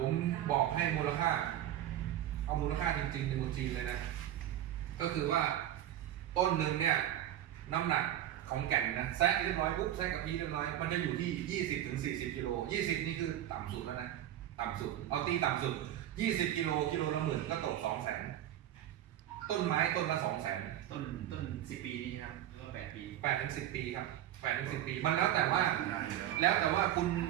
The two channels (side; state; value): left; quieter; 12.2 dB